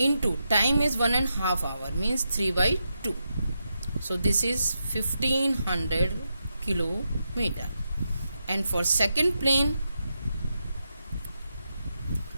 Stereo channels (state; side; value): inverted; both; correlation -0.85